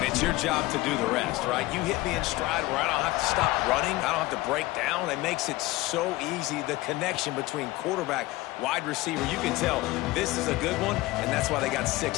it's your job to do the rest, right? You hit me in stride where I don't have to stop running. I don't have to break down. It makes it so easy, the connection between quarterback, wide receiver. You can tell this is a good one, and that's why they got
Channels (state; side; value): quieter; right; 19.2 dB